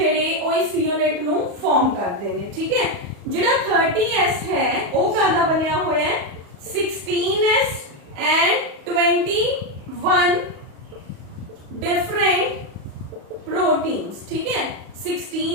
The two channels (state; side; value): late; left; 35 ms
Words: ओ इस यूनिट नु फॉर्म करते हैं। ठीक है, जेड़ा 30s है वो कादा बनया होया है 16s एंड 21 डिफरेंट प्रोटीन्स। ठीक है,